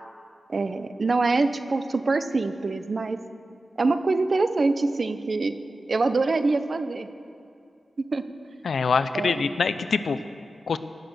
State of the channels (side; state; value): both; normal; correlation 0.92